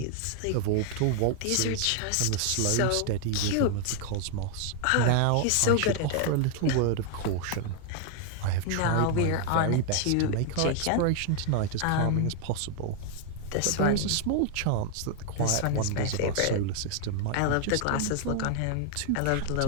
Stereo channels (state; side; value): different; both; correlation 0.00